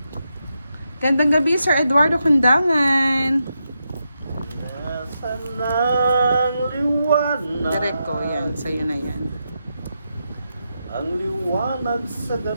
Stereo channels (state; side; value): inverted; both; correlation -0.85